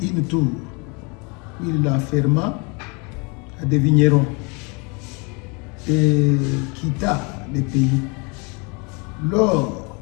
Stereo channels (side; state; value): right; quieter; 31.4 dB